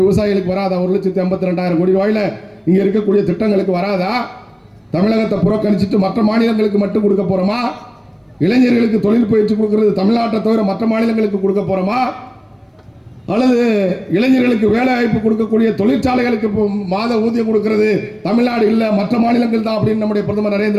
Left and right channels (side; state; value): both; identical; correlation 1.00